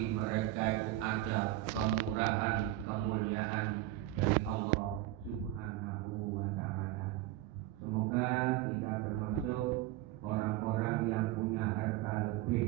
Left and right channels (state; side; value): quieter; left; 15.0 dB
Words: mereka itu ada kemurahan, kemuliaan dari Allah Subhanahu wa ta'ala. Semoga kita termasuk orang-orang yang punya harta